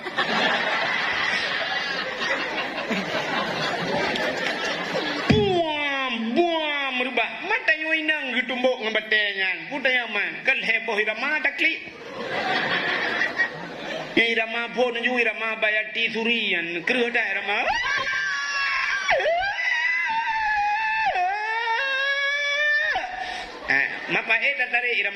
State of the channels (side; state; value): both; identical; correlation 1.00